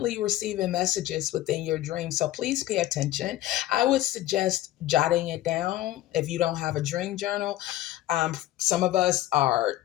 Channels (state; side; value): quieter; right; 14.7 dB